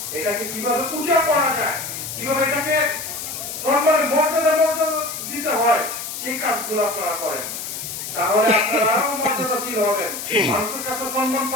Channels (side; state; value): left; noise; hiss, 7 dB below the sound